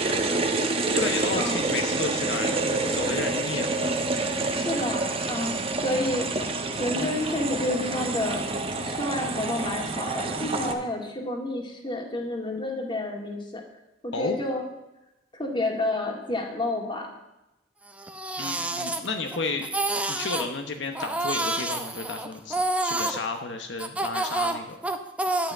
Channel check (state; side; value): normal; both; correlation 0.35